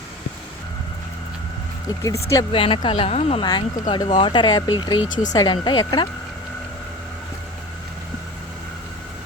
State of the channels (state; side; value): normal; both; correlation 0.36